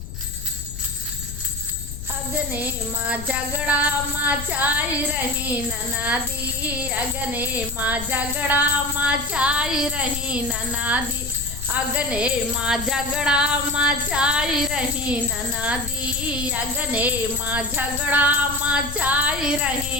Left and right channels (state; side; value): noise; left; rumble, 9 dB below the sound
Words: अगने माँ झगड़ा मचाई रही ननादी, अगने माँ झगड़ा मचाई रही ननादी, अगने माँ झगड़ा मचाई रही ननादी, अगने माँ झगड़ा मचाई